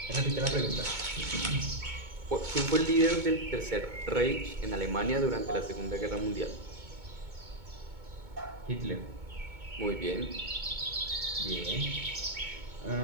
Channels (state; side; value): late; left; 2.2 ms